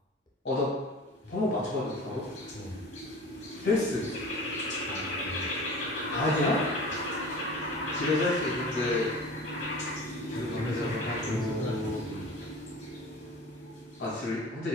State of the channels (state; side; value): normal; both; correlation 0.38